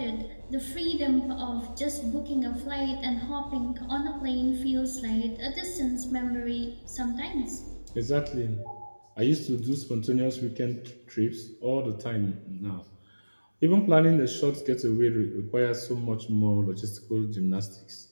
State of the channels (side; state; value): both; inverted; correlation -1.00